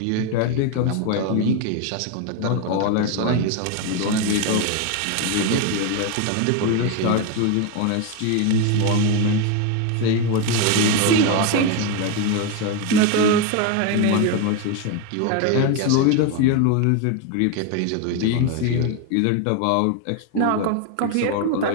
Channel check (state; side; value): different; both; correlation 0.02